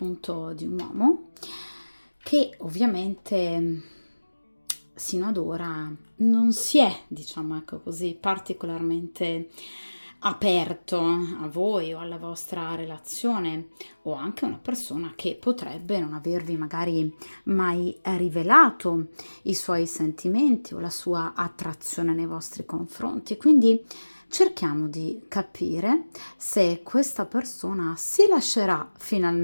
di un uomo che ovviamente sino ad ora non si è, diciamo ecco così, particolarmente aperto a voi o alla vostra relazione, o anche una persona che potrebbe non avervi magari mai rivelato i suoi sentimenti o la sua attrazione nei vostri confronti. Quindi cerchiamo di capire se questa persona si lascerà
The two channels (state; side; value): inverted; both; correlation -1.00